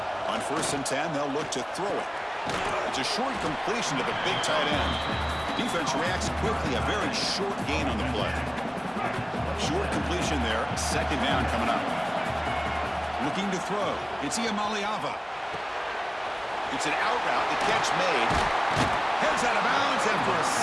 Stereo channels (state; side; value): identical; both; correlation 1.00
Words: On 1st and 10, they'll look to throw it. It's a short completion to the big tight end. Defense reacts quickly, a very short gain on the play. Short completion there, 2nd down coming up. Looking to throw, it's Iamaleava. It's an out route, the catch made. Heads out of bounds after a